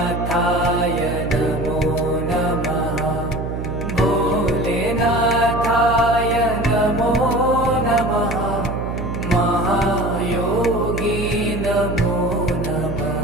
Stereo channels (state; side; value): noise; right; hum, 5 dB below the sound